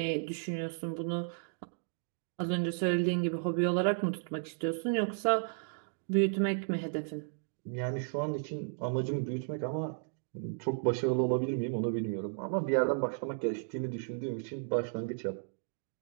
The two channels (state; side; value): silent; left; digital silence